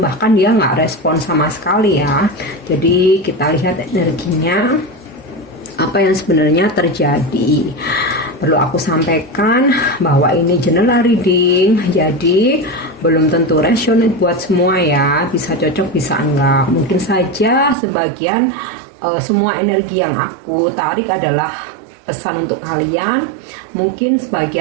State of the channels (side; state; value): left; drops out; at 17.8 s